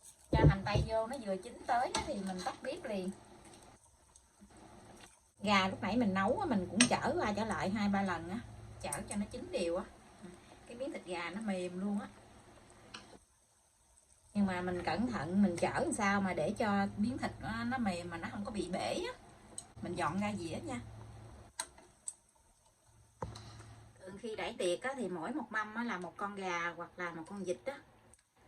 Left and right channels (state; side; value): identical; both; correlation 1.00